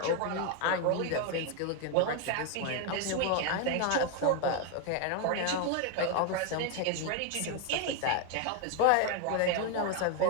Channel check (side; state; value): both; different; correlation 0.01